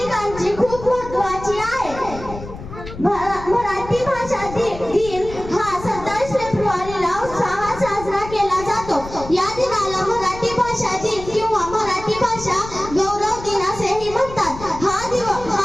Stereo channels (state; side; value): noise; left; rumble, 13 dB below the sound